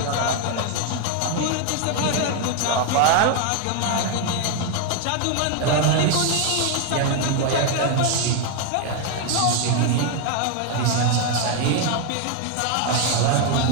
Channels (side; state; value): both; different; correlation 0.01